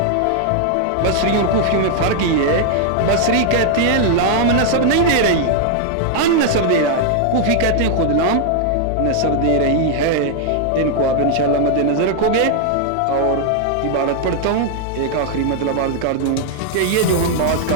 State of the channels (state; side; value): different; both; correlation 0.00